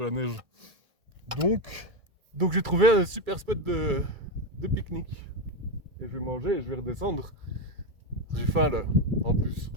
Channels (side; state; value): left; late; 2.3 ms